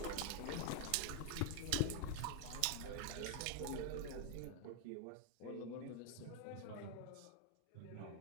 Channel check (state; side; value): different; both; correlation 0.01